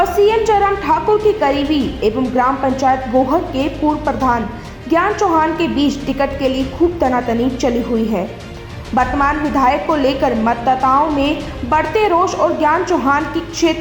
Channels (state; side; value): identical; both; correlation 1.00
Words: सीएम जयराम ठाकुर की करीबी एवं ग्राम पंचायत गोहर के पूर्व प्रधान ज्ञान चौहान के बीच टिकट के लिए खूब तनातनी चली हुई है। वर्तमान विधायक को लेकर मतदाताओं में बढ़ते रोष और ज्ञान चौहान की